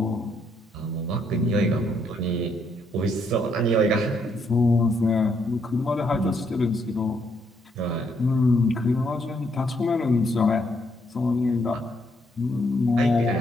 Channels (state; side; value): normal; both; correlation 0.73